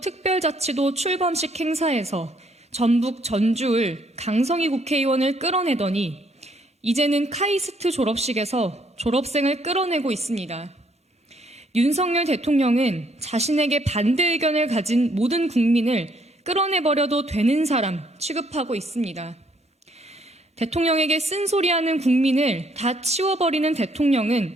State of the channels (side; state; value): both; normal; correlation 0.68